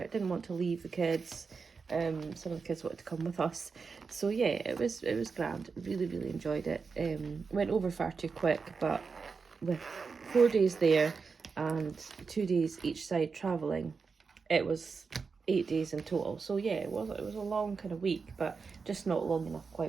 Didn't want to leave the kids. Some of the kids wanted to come with us. So yeah, it was grand. Really enjoyed it. Went over far too quick, but with 4 days there and 2 days each side travelling, it was 8 days in total. So yeah, it was a long kind of week, but just not long enough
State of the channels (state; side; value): quieter; left; 5.0 dB